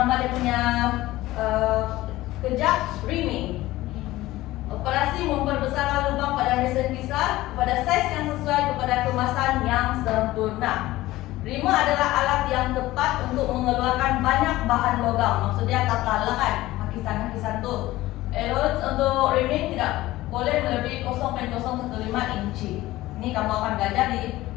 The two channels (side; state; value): right; quieter; 17.1 dB